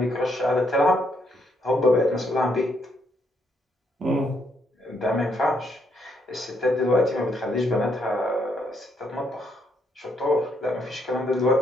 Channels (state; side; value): normal; both; correlation 0.74